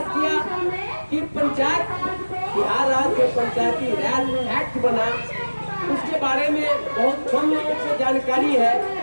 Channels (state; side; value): inverted; both; correlation -1.00